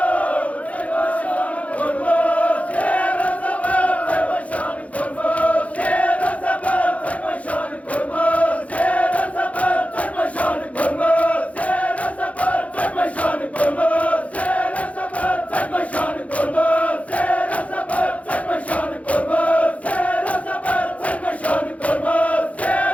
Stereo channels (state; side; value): late; right; 0.066 ms